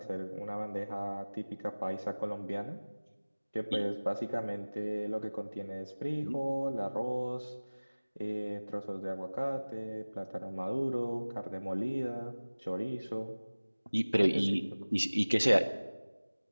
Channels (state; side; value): inverted; both; correlation -1.00